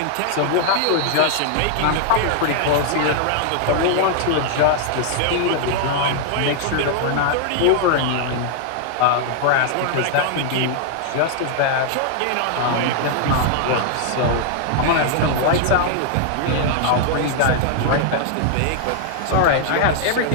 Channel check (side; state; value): both; different; correlation 0.00